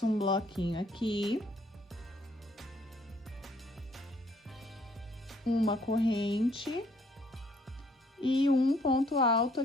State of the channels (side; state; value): both; normal; correlation 0.64